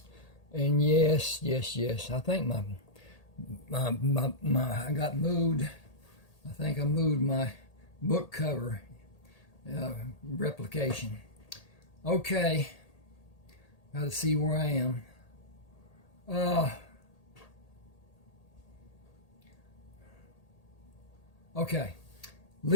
And yes. I think I got moved. I think I moved my book cover replication. Okay. Got to see where I am. Okay.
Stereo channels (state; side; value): late; right; 1.8 ms